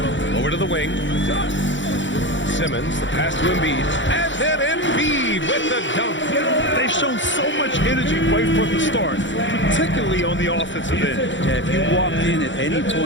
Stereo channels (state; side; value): late; right; 0.54 ms